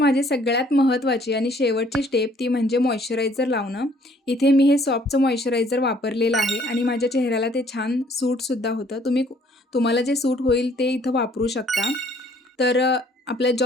सगळ्यात महत्त्वाची आणि शेवटची स्टेप ती म्हणजे मॉइश्चरायझर लावणं. इथे मी हे सॉफ्टचं मॉइश्चरायझर वापरलेलं आहे आणि माझ्या चेहऱ्याला ते छान सूटसुद्धा होतं. तुम्हाला जे सूट होईल ते इथं वापरू शकता. तर आपल्या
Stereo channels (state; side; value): normal; both; correlation 0.61